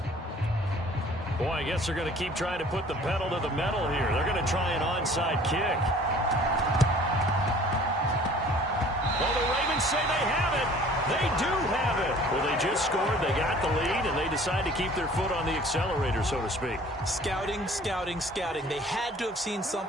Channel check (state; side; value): normal; both; correlation 0.51